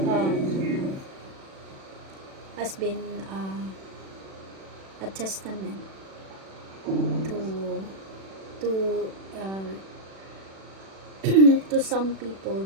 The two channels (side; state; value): left; late; 36 ms